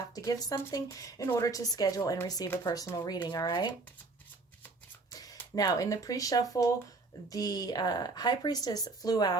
to give something in order to schedule and receive a personal reading. All right. Now, in the pre-shuffle, the High Priestess flew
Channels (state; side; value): quieter; left; 3.6 dB